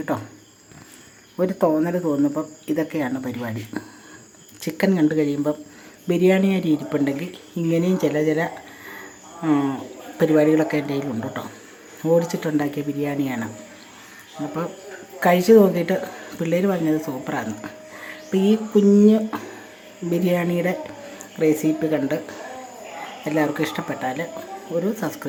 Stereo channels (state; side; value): identical; both; correlation 1.00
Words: ഒരു തോന്നൽ തോന്നുമ്പം ഇതൊക്കെയാണ് പരിപാടി. ചിക്കൻ കണ്ടു കഴിയുമ്പം ബിരിയാണി അരി ഇരിപ്പുണ്ടെങ്കിൽ ഇങ്ങനെയും ചില പരിപാടികളൊക്കെ എൻ്റെ കയ്യിലുണ്ട് കേട്ടോ. ഓടിച്ചിട്ടുണ്ടാക്കിയ ബിരിയാണിയാണ്. അപ്പോൾ കഴിച്ച് നോക്കിയിട്ട് പിള്ളേർ പറഞ്ഞത് സൂപ്പറാണ്. അപ്പോൾ ഈ കുഞ്ഞ് ബിരിയാണിയുടെ റെസിപ്പി കണ്ട് എല്ലാവർക്കും ഇഷ്ടപ്പെട്ടാൽ ഒരു